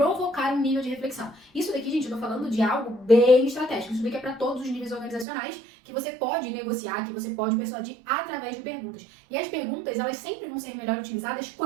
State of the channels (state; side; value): drops out; left; at 5.2 s